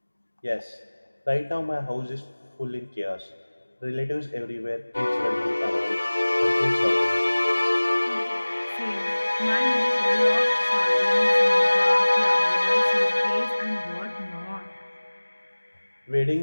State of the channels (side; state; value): both; inverted; correlation -1.00